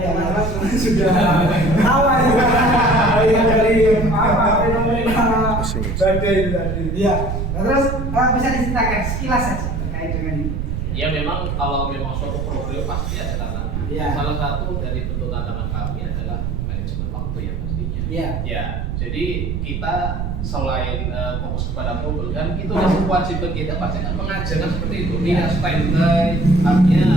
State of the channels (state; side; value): noise; right; rumble, 2 dB below the sound